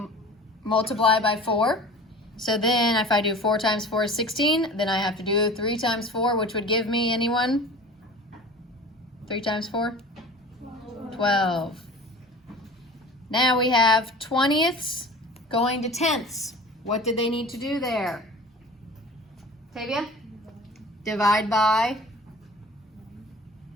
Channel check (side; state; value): both; normal; correlation 0.40